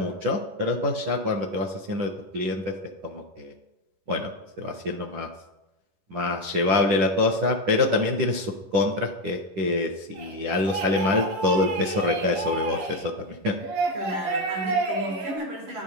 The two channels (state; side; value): late; left; 11 ms